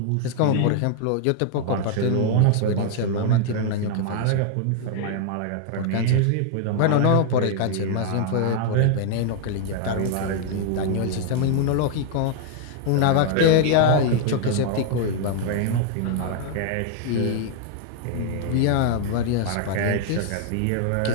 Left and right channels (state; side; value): different; both; correlation 0.00